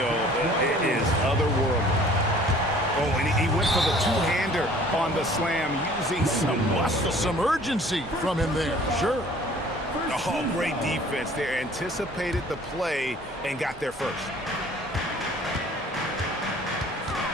is otherworldly. Oh, and he went for the two-hander on the slam using some muscle. Some urgency from him there, sure. Oh, great defense there. Anticipated the play and got there first.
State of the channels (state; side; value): normal; both; correlation 0.52